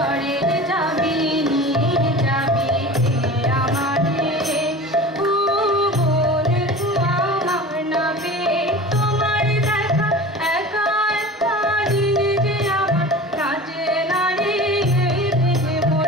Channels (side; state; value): both; normal; correlation 0.36